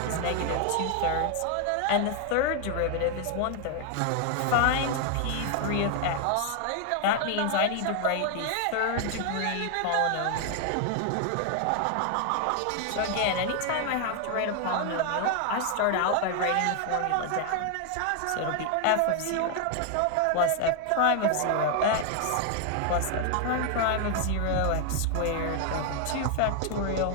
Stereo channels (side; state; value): both; different; correlation 0.00